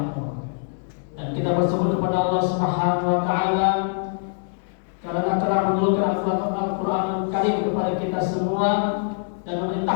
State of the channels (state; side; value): silent; right; digital silence